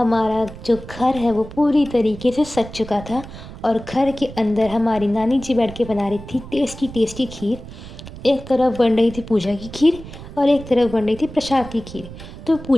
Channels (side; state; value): right; noise; rumble, 14 dB below the sound